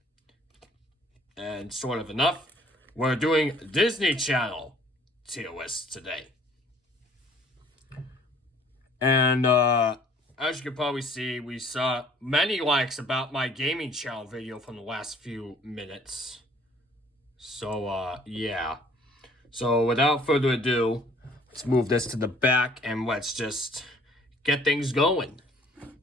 And sort of enough, we're doing Disney Channel tier list today. And as you can probably see, we saw many likes about my gaming channel video from the last few minutes. So, yeah. So, without further ado, let's move this to the back and let's just get things going.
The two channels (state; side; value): normal; both; correlation 0.56